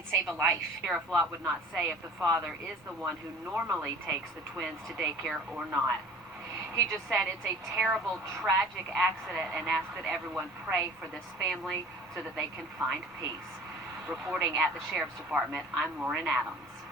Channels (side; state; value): both; normal; correlation 0.45